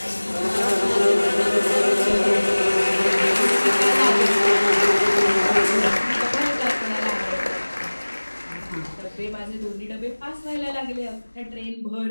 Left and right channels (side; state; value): both; inverted; correlation -1.00